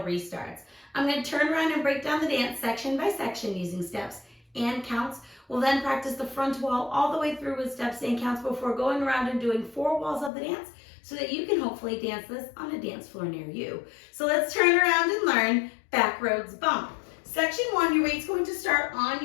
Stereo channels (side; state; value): right; drops out; at 10.3 s